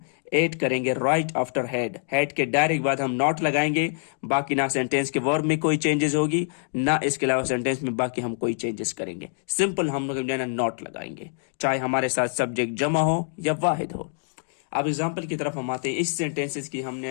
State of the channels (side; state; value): right; silent; 61 dB below the other